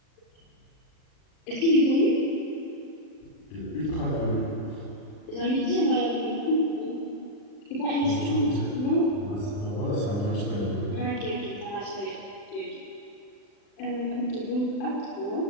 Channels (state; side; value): late; right; 40 ms